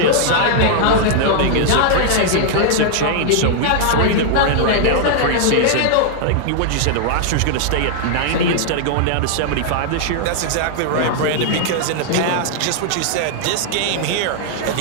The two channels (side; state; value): both; different; correlation -0.01